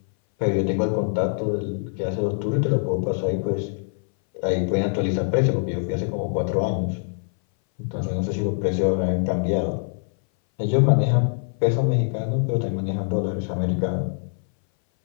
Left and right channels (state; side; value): silent; right; 60 dB below the other